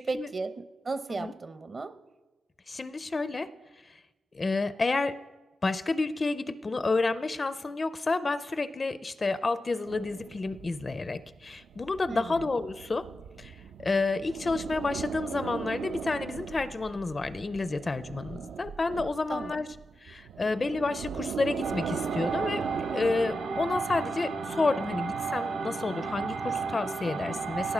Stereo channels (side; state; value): both; normal; correlation 0.90